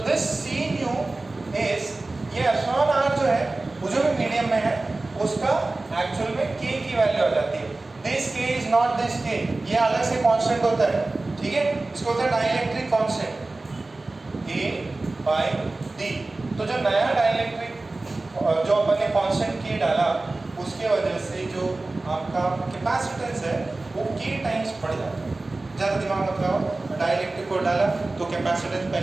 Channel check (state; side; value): quieter; left; 3.1 dB